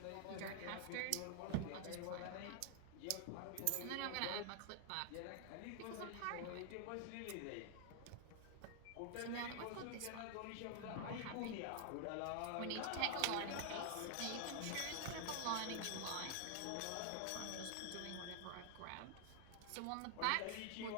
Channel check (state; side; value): different; both; correlation 0.00